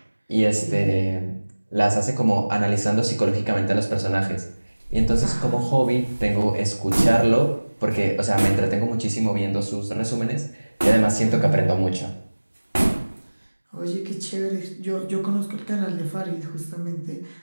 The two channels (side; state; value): both; inverted; correlation -1.00